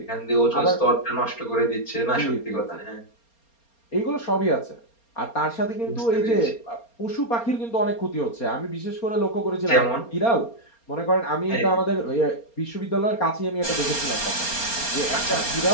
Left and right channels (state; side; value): late; right; 4.3 ms